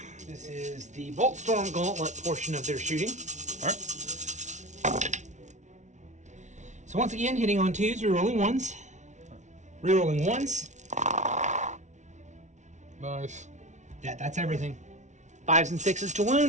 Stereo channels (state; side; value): late; left; 0.34 ms